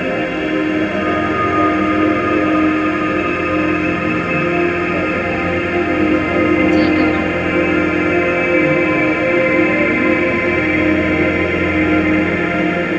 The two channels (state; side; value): identical; both; correlation 1.00